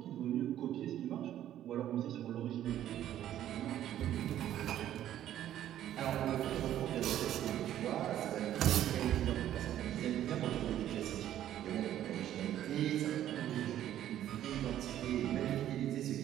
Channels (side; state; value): left; quieter; 11.8 dB